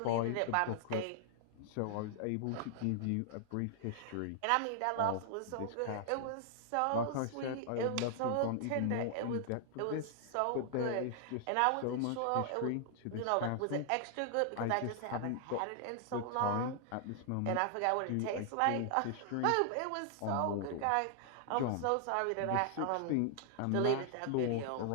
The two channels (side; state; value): both; different; correlation -0.01